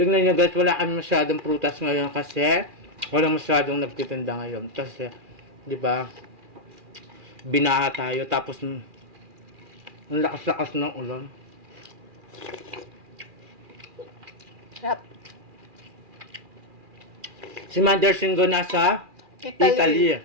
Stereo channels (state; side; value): late; left; 2.4 ms